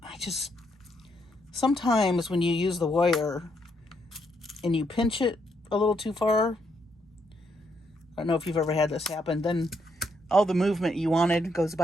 Sometimes when you use the wire and you pinch it a little too far, I don't know if you've ever had this happen, then all the movement you wanted goes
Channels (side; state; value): both; normal; correlation 0.76